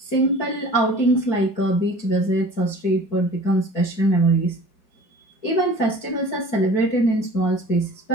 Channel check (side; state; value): right; late; 4.6 ms